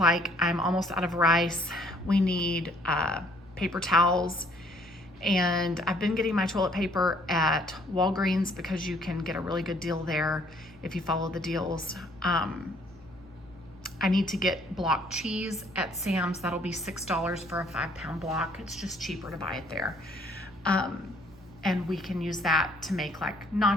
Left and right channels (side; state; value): both; normal; correlation 0.62